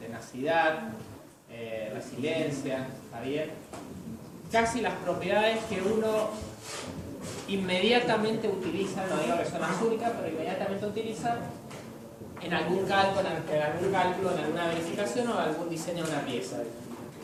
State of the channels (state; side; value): identical; both; correlation 1.00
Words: resiliencia, ¿está bien? Casi las propiedades que uno inmediatamente utiliza, no digo que son las únicas, pero inmediatamente utiliza en algún cálculo, en alguna verificación o algún diseño de una pieza.